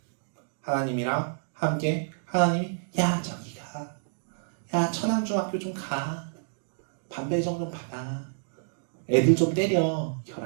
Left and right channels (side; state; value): left; silent; digital silence